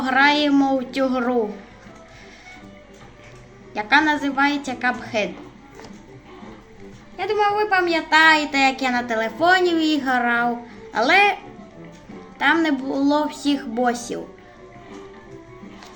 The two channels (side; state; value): both; identical; correlation 1.00